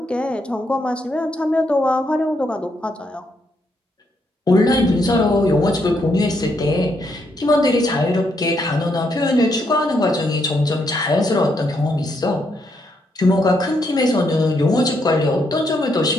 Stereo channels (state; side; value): normal; both; correlation 0.76